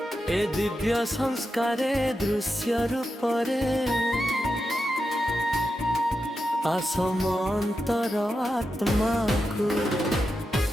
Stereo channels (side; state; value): both; normal; correlation 0.89